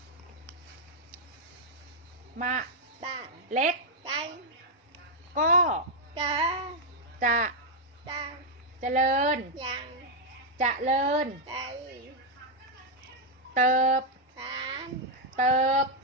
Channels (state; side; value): normal; both; correlation -0.02